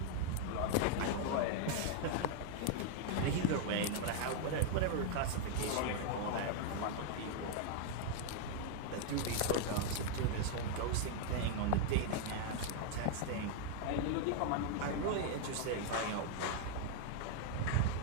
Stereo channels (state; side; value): different; both; correlation 0.00